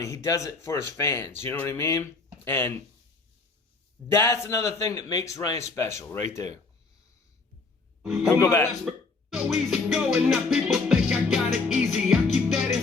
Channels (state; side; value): quieter; right; 4.0 dB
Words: He does it for his fans. You know what I mean? And that's another thing that makes Ryan special right there. We'll go back. So easy going, now people think I got it easy. I keep that